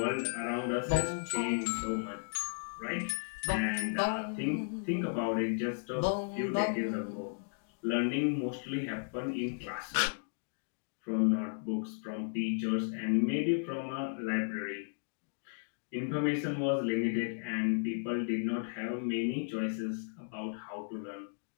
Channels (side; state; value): right; silent; digital silence